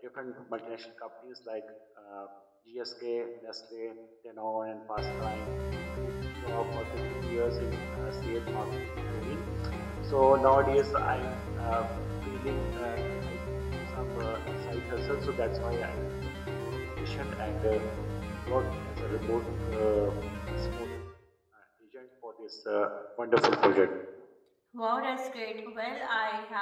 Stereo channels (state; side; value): identical; both; correlation 1.00